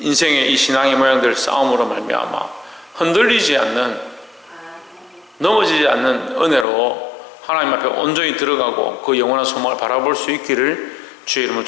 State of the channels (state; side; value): drops out; right; at 6.7 s